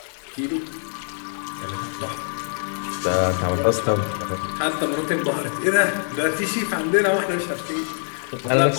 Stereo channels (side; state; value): right; silent; digital silence